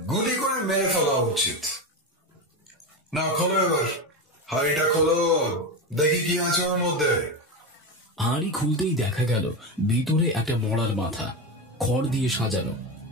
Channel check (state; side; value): normal; both; correlation 0.18